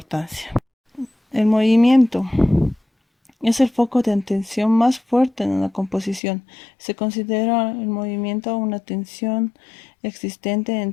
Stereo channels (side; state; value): right; drops out; at 6.2 s